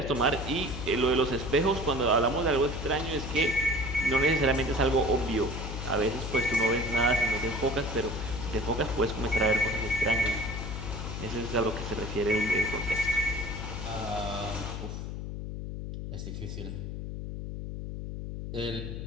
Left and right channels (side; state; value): left; noise; hum, 6 dB below the sound